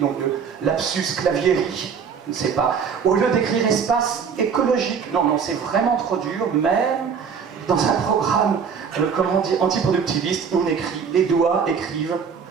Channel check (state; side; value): quieter; left; 6.5 dB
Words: donc de lapsus clavieri, je ne sais pas, au lieu d'écrire espace écologique. Non, c'est vraiment trop dur, même dans un programme, comment dire, antiproductiviste, on écrit, les doigts écrivent